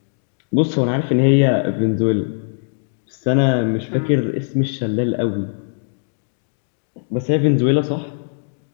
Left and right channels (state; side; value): silent; right; digital silence